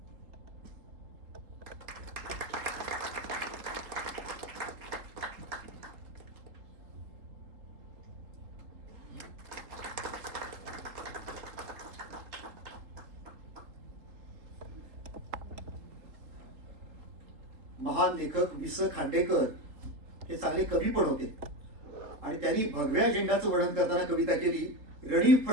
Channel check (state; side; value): late; left; 3.6 ms